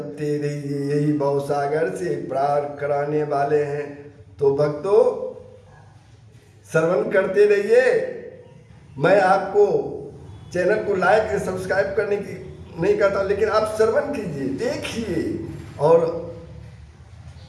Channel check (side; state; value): both; identical; correlation 1.00